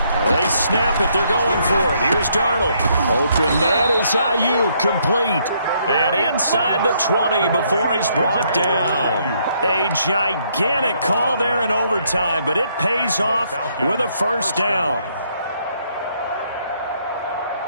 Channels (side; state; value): both; inverted; correlation -0.71